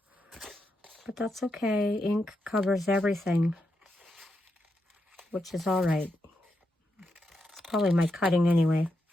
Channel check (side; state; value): both; normal; correlation 0.84